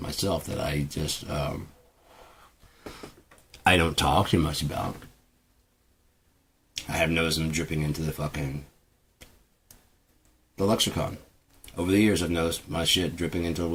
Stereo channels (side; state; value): both; identical; correlation 1.00